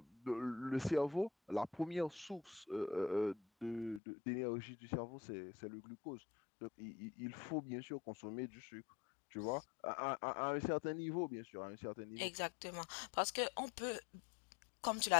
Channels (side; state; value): right; drops out; at 4.0 s